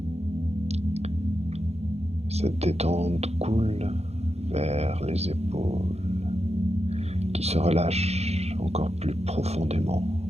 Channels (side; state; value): left; late; 0.31 ms